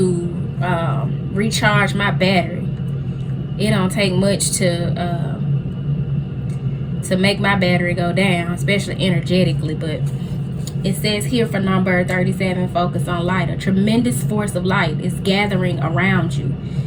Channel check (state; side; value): identical; both; correlation 1.00